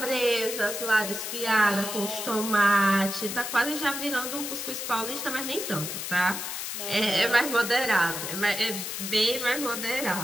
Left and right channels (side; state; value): left; noise; hiss, 5 dB below the sound